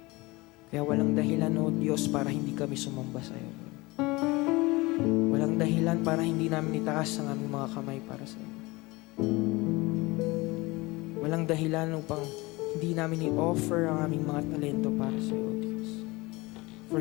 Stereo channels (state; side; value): quieter; right; 22.8 dB